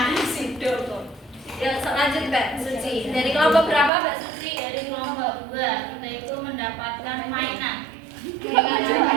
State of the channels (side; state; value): left; drops out; at 3.9 s